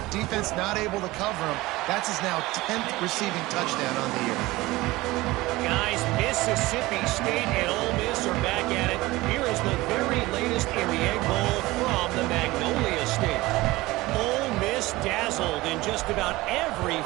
Defense not able to cover him. That's his now 10th receiving touchdown on the year. Guys, Mississippi State and Ole Miss are back at it. Here is the very latest in the Egg Bowl from the Magnolia State. Ole Miss dazzled in just about every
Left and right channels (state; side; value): quieter; left; 19.6 dB